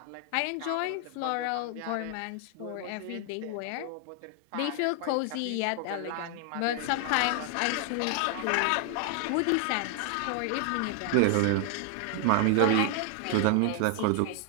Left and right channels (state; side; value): different; both; correlation 0.00